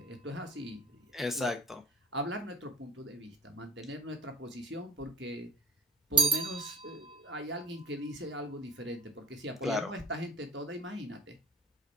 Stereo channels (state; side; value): normal; both; correlation 0.37